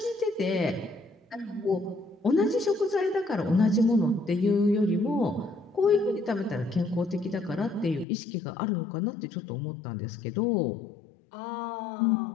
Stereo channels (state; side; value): drops out; right; at 8.1 s